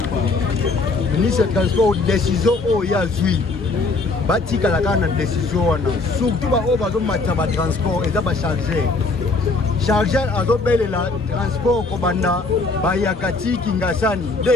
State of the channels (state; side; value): quieter; right; 3.6 dB